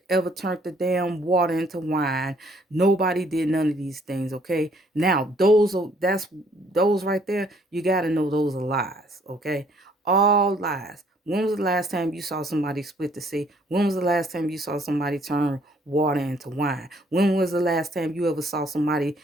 ever turned the damn water into wine. Nobody did none of these things. Okay. Now those right there, you got to know those are lies. Okay. All lies. When was the last time you saw somebody split the sea? When was the last time you saw somebody turn water into wine? When was the last time you ever saw somebody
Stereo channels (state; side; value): normal; both; correlation 0.63